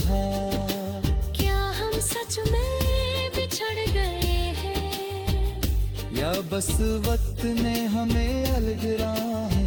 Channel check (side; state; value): both; identical; correlation 1.00